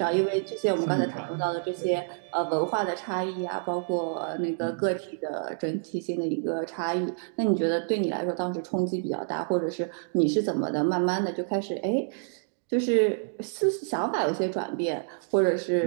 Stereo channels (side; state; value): left; silent; digital silence